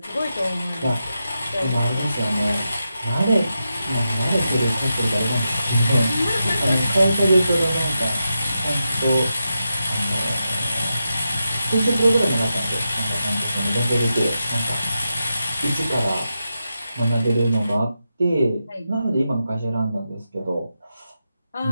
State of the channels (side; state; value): both; inverted; correlation -0.88